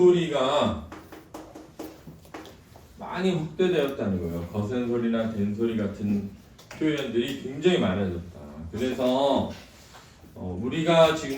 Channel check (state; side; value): identical; both; correlation 1.00